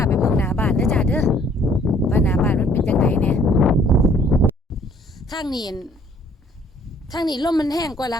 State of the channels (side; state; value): both; normal; correlation 0.60